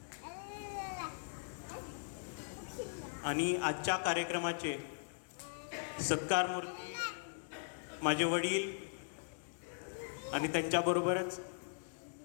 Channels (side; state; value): right; silent; digital silence